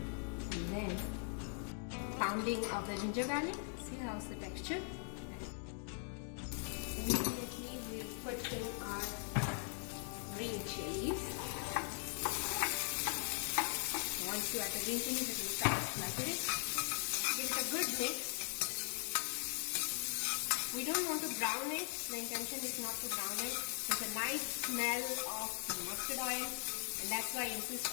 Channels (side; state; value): right; silent; 51 dB below the other